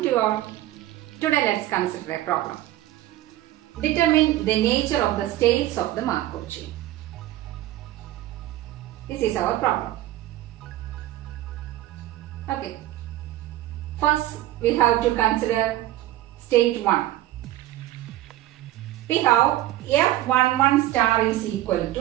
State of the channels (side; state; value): left; quieter; 15.0 dB